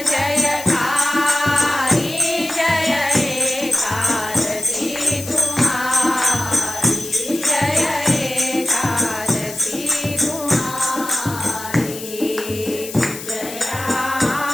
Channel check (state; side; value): noise; left; hiss, 11 dB below the sound